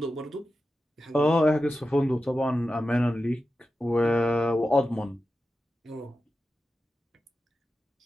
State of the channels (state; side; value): normal; both; correlation 0.92